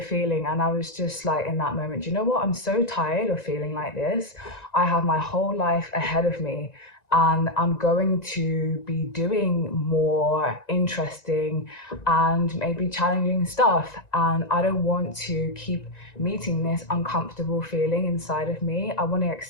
And I was just like, in that moment, you know what? I'm so tired of feeling like this. I have my whole life ahead of me. And I'm going to be doing more interesting and maybe challenging stuff. And I don't want to keep meeting this uncomfortable feeling inside of me. I want to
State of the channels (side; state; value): right; late; 1.9 ms